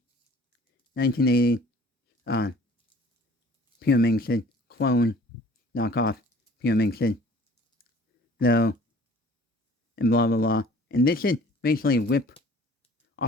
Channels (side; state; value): both; normal; correlation 0.51